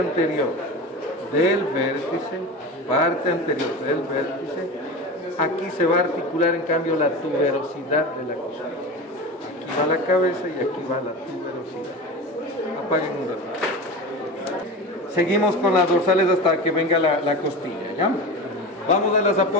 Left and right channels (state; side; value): normal; both; correlation 0.28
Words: del vértice, aquí se va a articular en cambio la tuberosidad de la costilla. Aquí va la cabeza y aquí va la tuberosidad. Apaguen un rato. Seguimos con las dorsales hasta que venga la costilla, ¿ya? Vamos a las